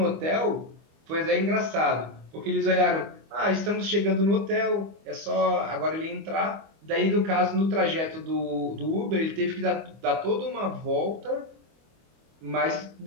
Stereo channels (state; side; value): late; left; 25 ms